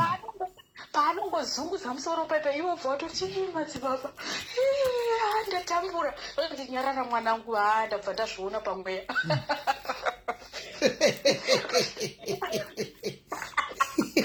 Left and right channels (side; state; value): both; identical; correlation 1.00